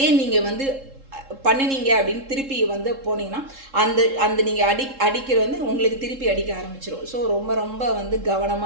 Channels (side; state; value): left; late; 3.7 ms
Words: நீங்கள் வந்து பண்ணினீங்க அப்படின்னு திருப்பி வந்து போனீங்கன்னா அந்த நீங்கள் அடிக்கிற வந்து உங்களுக்கு திருப்பி அடிக்க ஆரம்பிச்சிடும். ஸோ ரொம்ப ரொம்ப வந்து